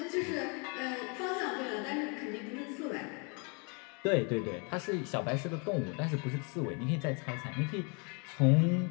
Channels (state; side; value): quieter; right; 34.2 dB